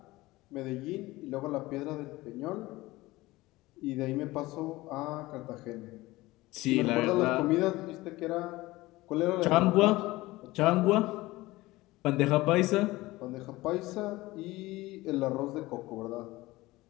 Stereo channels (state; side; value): quieter; right; 19.4 dB